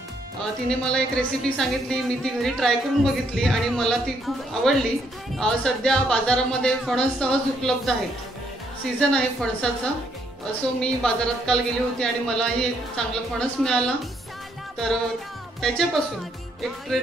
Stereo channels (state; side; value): normal; both; correlation 0.72